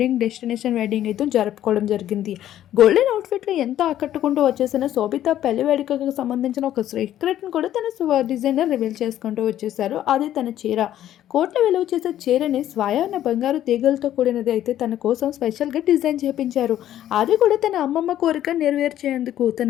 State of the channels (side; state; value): right; quieter; 12.0 dB